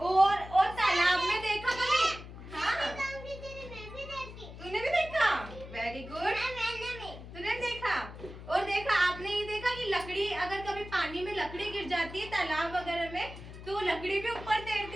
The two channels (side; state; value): left; noise; hum, 13 dB below the sound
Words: तालाब में देखा कभी? हाँ, तूने भी देखा? वेरी गुड, तूने देखा। और देखा आपने ये देखा कि लकड़ी अगर कभी पानी में लकड़ी गिर जाती है तालाब वगैरह में, तो लकड़ी भी ऊपर